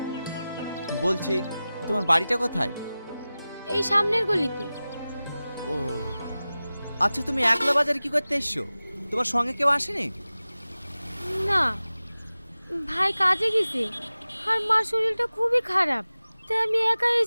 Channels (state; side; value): inverted; both; correlation -0.96